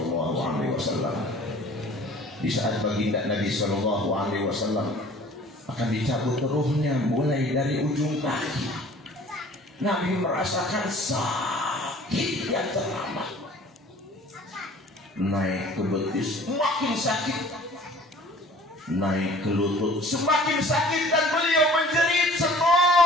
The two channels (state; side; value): normal; both; correlation 0.49